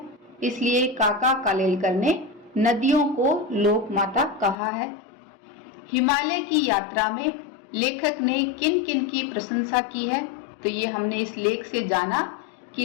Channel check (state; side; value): drops out; right; at 4.5 s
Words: इसलिए काका कालेलकर ने नदियों को लोक माता कहा है। हिमालय की यात्रा में लेखक ने किन किन की प्रशंसा की है, तो ये हमने इस लेख से जाना